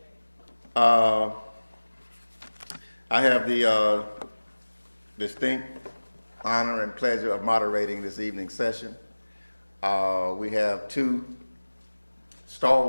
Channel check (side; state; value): both; inverted; correlation -1.00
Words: I have the distinct honor and pleasure of moderating this evening's session. We have two